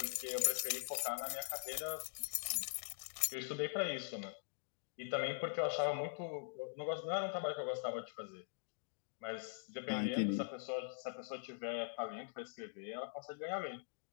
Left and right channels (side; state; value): right; silent; digital silence